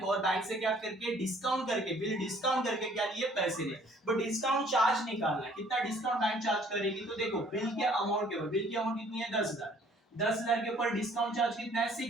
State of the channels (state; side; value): normal; both; correlation 0.58